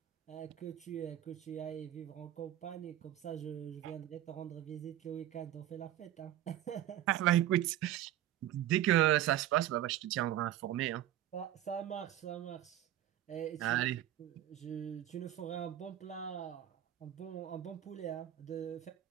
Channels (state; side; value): quieter; left; 12.5 dB